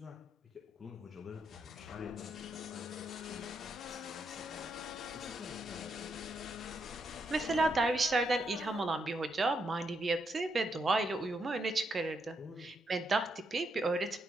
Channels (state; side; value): normal; both; correlation 0.80